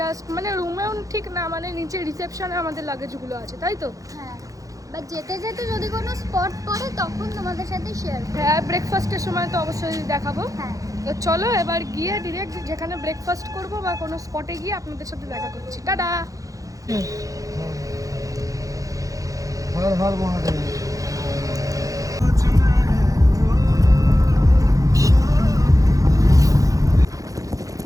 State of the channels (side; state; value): left; late; 0.17 ms